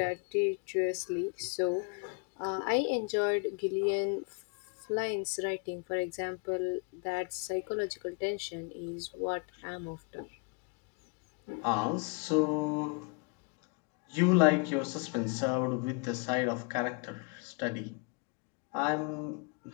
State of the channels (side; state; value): right; quieter; 35.3 dB